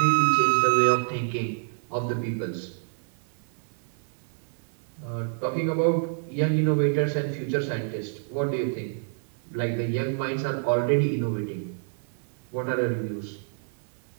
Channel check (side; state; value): left; silent; 60 dB below the other